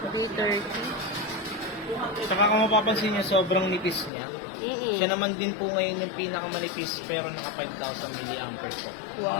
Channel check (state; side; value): drops out; right; at 4.1 s